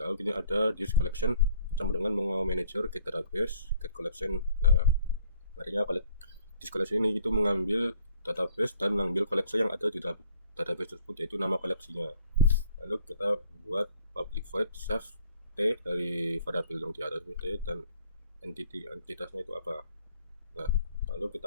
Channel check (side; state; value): both; inverted; correlation -0.58